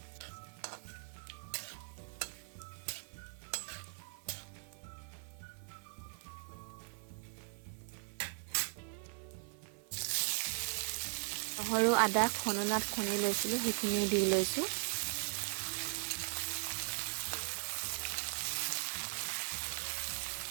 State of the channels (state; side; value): silent; left; 52 dB below the other